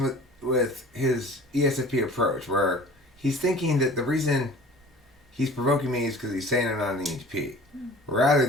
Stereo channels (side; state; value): both; normal; correlation 0.44